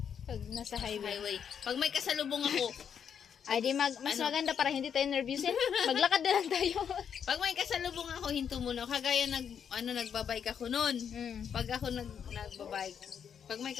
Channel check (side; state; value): right; quieter; 7.8 dB